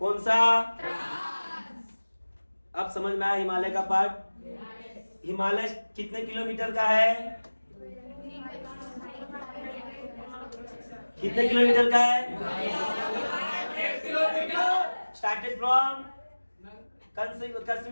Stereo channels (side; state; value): both; inverted; correlation -1.00